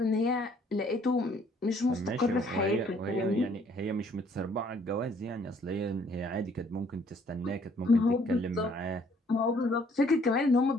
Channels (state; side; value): normal; both; correlation 0.62